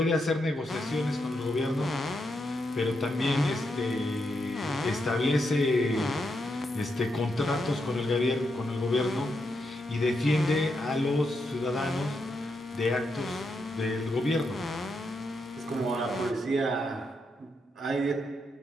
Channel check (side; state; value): both; normal; correlation 0.83